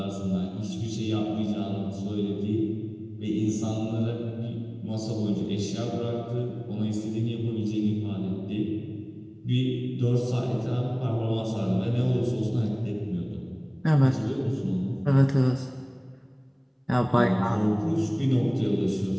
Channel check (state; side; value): identical; both; correlation 1.00